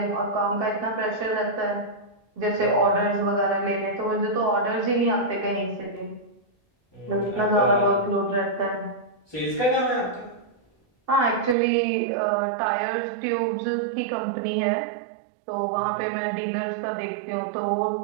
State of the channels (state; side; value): drops out; left; at 11.6 s